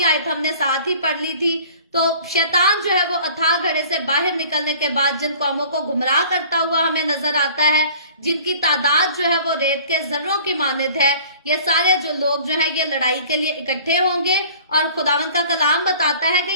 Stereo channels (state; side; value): inverted; both; correlation -0.49